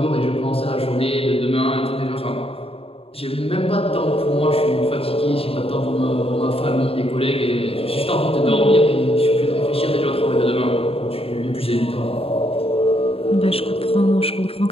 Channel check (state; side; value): late; right; 0.28 ms